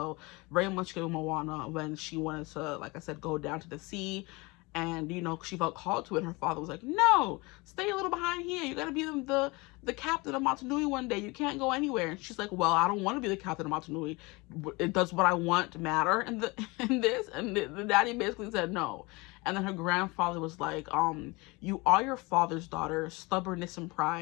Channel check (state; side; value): quieter; right; 25.2 dB